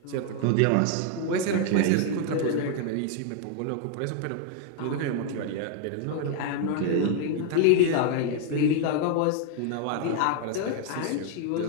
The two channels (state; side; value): different; both; correlation 0.00